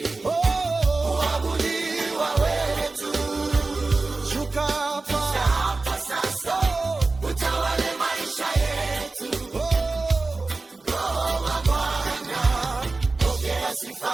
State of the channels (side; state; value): left; quieter; 3.5 dB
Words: kuabudiwa wewe tu. Shuka hapa sasa, utawale maisha yetu. Roho wa Bwana, pokea sifa